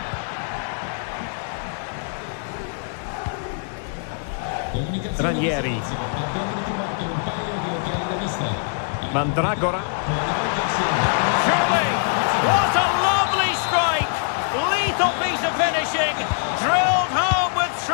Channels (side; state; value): right; silent; 63 dB below the other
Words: Ranieri. Mandragora. Surely! What a lovely strike! Lethal piece of finishing. Drilled home with